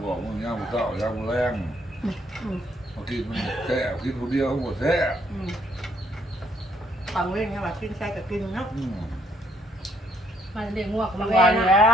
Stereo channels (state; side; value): normal; both; correlation 0.69